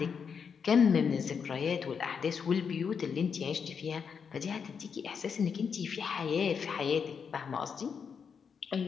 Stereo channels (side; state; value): right; quieter; 6.4 dB